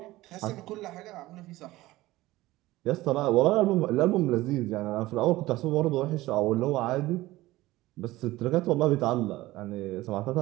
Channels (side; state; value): left; quieter; 17.9 dB